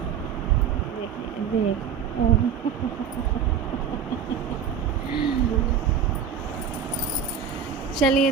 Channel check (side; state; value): left; quieter; 7.5 dB